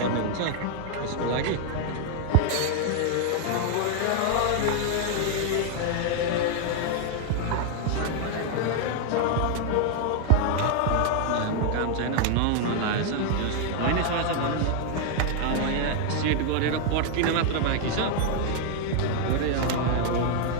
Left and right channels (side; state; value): both; different; correlation 0.00